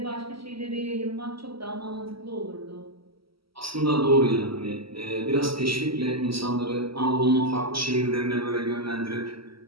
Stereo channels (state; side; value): late; left; 0.75 ms